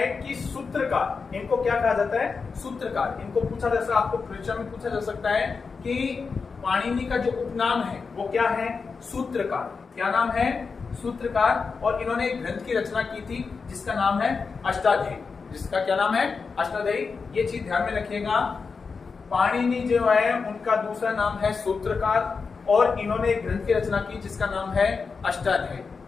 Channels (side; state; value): right; quieter; 5.0 dB